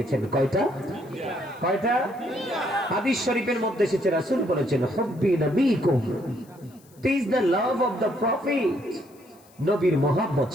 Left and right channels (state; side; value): noise; left; hiss, 29 dB below the sound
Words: কয়টা? কয়টা? হাদিস শরীফের মধ্যে এসেছে, রাসূল বলেছেন হুব্বি নবীকুম, teach the love of the prophet. নবীর মহব্বত